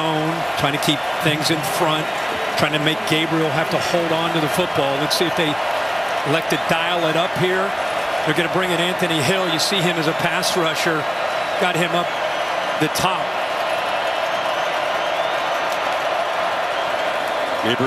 trying to keep things in front, trying to make Gabriel have to hold on to the football. Let's see if they elect to dial it up here. They're going to bring in Anthony Hill. You see him as a pass rusher. Got him up the top.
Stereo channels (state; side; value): identical; both; correlation 1.00